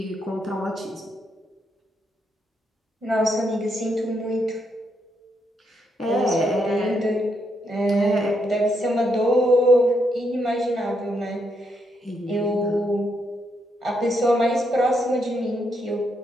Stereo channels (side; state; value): both; normal; correlation 0.78